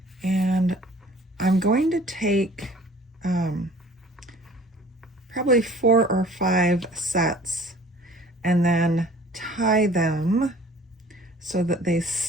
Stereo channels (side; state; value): both; normal; correlation 0.50